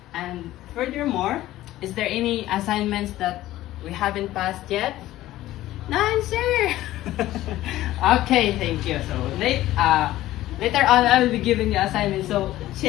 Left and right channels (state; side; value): quieter; right; 15.2 dB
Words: And furthermore, is there any assignments that we haven't passed yet? None, sir. Okay, thank you. So later on, I will be giving you assignments. So